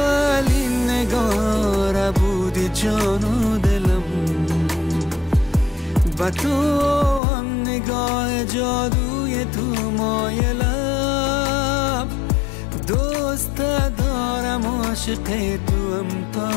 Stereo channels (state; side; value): drops out; right; at 7.2 s